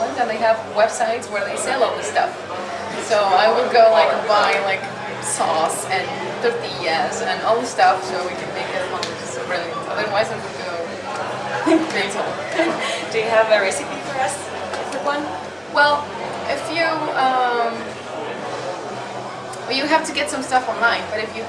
and they have websites where they sell all this stuff. So I will go like buy like sauce and tortillas and all the stuff so we can make it at home, which is brilliant. Otherwise I would go mental. Do you have a recipe for us? Quick one? Well, if you have to get some stuff online, but if you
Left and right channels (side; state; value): both; identical; correlation 1.00